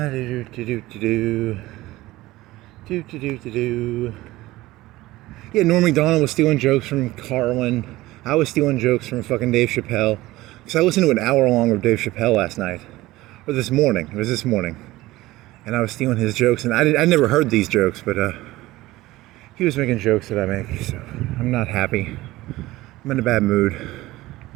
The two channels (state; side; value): quieter; left; 18.0 dB